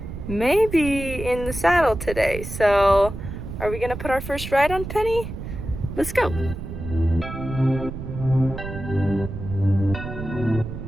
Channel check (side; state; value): right; noise; rumble, 8 dB below the sound